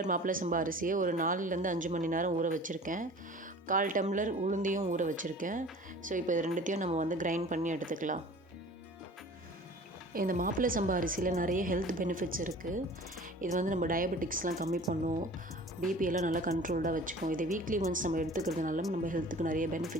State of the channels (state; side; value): normal; both; correlation 0.43